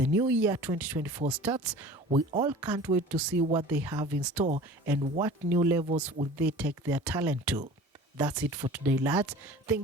new year 2024 starts, we all can't wait to see what they have in store and what new levels will they take their talent to. That's it for today, lads.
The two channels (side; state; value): both; normal; correlation 0.42